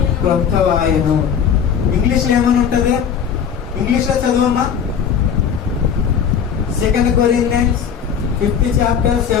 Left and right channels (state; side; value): quieter; right; 7.7 dB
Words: క్రొత్తవాయెను. ఇంగ్లీష్ లో ఏమని ఉంటది? ఇంగ్లీష్ లో చదవమ్మా. 2 Corinthians 5th chapter